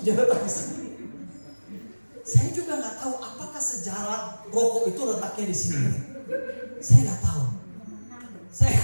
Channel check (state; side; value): inverted; both; correlation -1.00